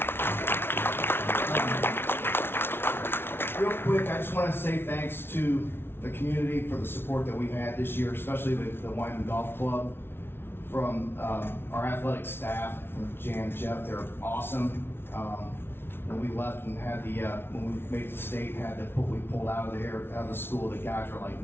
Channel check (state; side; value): late; right; 0.11 ms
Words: Real quick, I just want to say thanks to the community for the support that we've had this year, especially with the Wyman Golf Club. From our athletic staff, from Jan and Jeff, they're awesome. When we left and had the, when we made the state, had the we pulled out of the school, the guys were like,